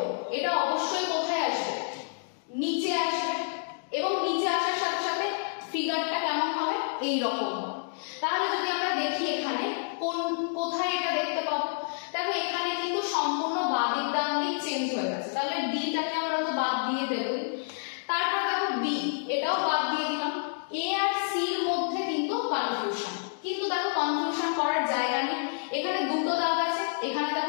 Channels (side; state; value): right; silent; digital silence